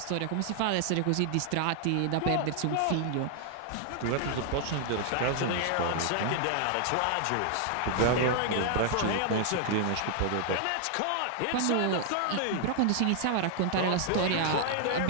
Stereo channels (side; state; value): both; different; correlation 0.00